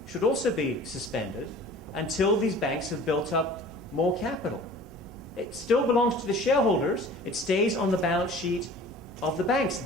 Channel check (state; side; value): normal; both; correlation 0.45